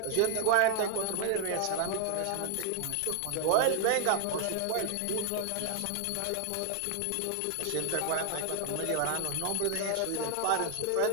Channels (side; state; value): both; different; correlation -0.01